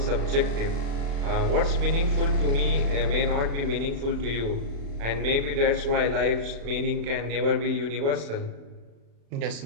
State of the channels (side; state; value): left; late; 36 ms